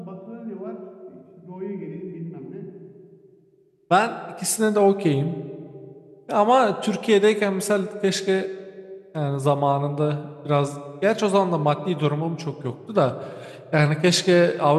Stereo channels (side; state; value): both; identical; correlation 1.00